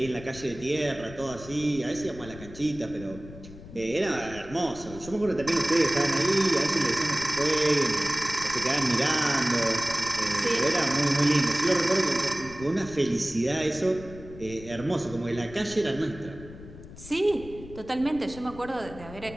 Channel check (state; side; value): noise; left; rumble, 16 dB below the sound